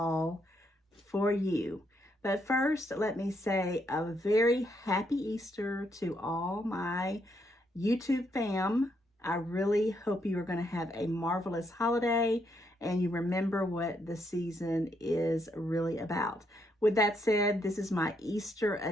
for you. But first, let me say a very happy Easter to all my YouTube fam. I really hope you are going to have a marvelous holiday and you remember what the season is really about. With that said, this is my Easter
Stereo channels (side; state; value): both; normal; correlation 0.76